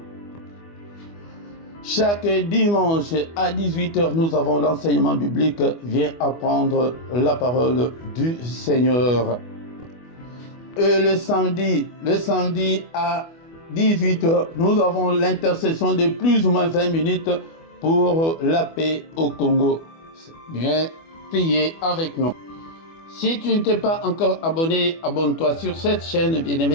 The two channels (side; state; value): right; late; 24 ms